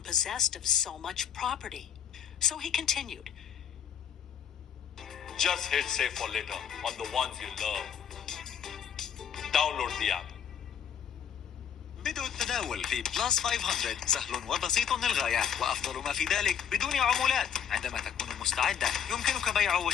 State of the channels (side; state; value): right; quieter; 8.3 dB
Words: possessed of so much property. So he continued, "Just hit save for later on the ones you love. Download the app." بدء التداول في بلس 500 سهل وبسيط للغاية، وأفضل ما في ذلك بدون عمولات. عندما تكون مستعدة يمكنك بيع